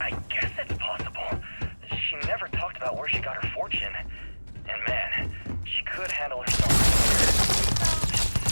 guess it's possible. She never talked about where she got her fortune. And man, she could handle herself.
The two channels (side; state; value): both; inverted; correlation -1.00